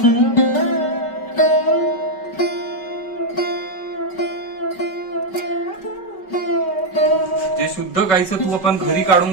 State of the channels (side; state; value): right; late; 5.3 ms